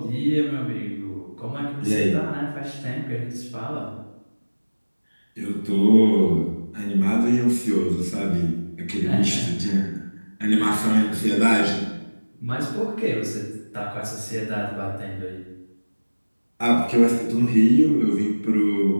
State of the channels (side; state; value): both; inverted; correlation -1.00